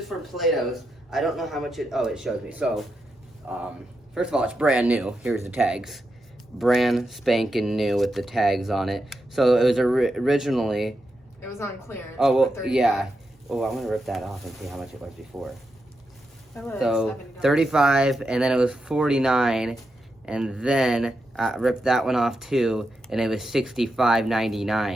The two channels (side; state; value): both; normal; correlation 0.86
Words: from Plato's. I don't know how much it... Oh, it shows me. So, first of all, it's brand new. Here's the tags. Brand spanking new with the tags on it. So it was originally... It was on clearance. Oh, well, yeah. Oh, I'm going to rip that off and see how much it was before. So, $35, and then it was $49, and then I ripped that one off too, and it was